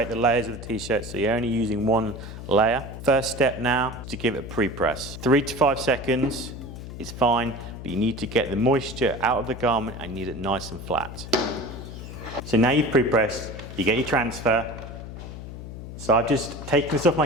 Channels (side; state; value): left; noise; hum, 11 dB below the sound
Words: the layers of the t-shirt so you're only using one layer. First step now is to give it a pre-press. 3 to 5 seconds is fine, but you need to get the moisture out of the garment and you need it nice and flat. So now you've pre-pressed, you get your transfer. So I've just taken this off